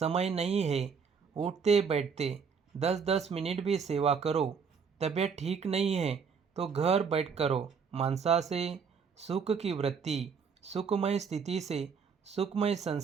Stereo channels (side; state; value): left; quieter; 6.0 dB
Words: नहीं है। उठते बैठते 10-10 मिनट भी सेवा करो। तबीयत ठीक नहीं है तो घर बैठ करो। मनसा से सुख की वृत्ति, सुखमय स्थिति से सुखमय